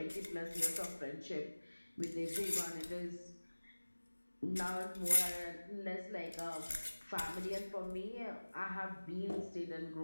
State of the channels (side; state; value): both; inverted; correlation -1.00